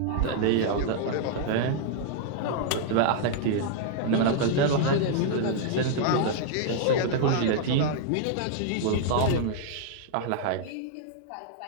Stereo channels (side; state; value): both; different; correlation -0.01